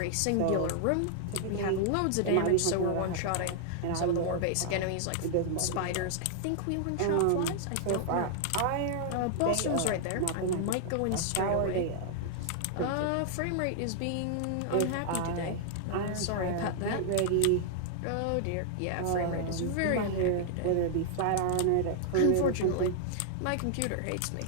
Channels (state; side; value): different; both; correlation -0.01